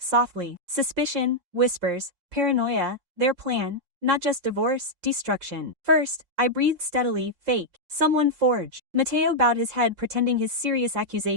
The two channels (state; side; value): late; left; 5.7 ms